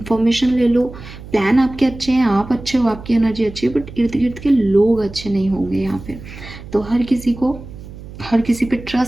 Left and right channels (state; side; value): noise; right; hum, 15 dB below the sound